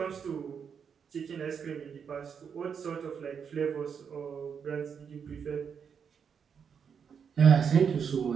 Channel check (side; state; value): left; quieter; 6.9 dB